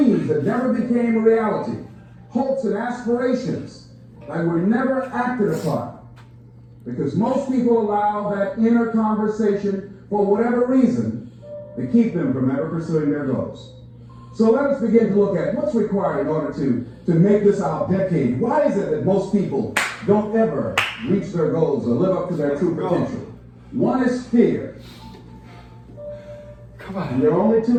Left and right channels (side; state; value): both; identical; correlation 1.00